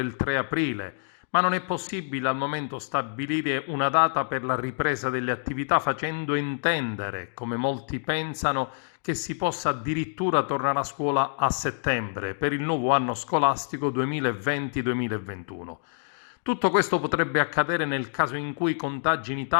3 aprile, ma non è possibile al momento stabilire una data per la ripresa delle attività facendo intendere, come molti pensano, che si possa addirittura tornare a scuola a settembre per il nuovo anno scolastico 2020-2021. Tutto questo potrebbe accadere nel caso in cui i contagi in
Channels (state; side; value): silent; right; digital silence